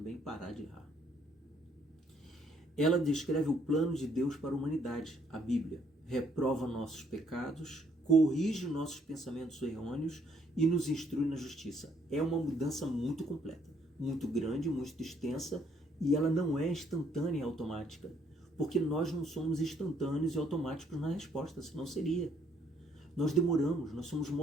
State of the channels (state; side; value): normal; both; correlation 0.68